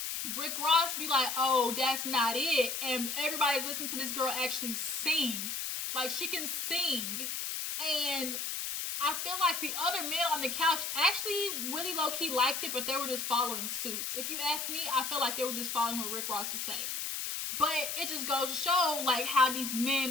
Rick Ross be like, oh, that's not it, and everybody's listening to this girl actually sing. Like, she can sing. And I feel like the other men on the couch actually really low-key liked it, but they were just following suit. If you ask me, I feel like they were just following what Rick Ross was saying. But it just goes to show, like, how these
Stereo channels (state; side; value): noise; left; hiss, 3 dB below the sound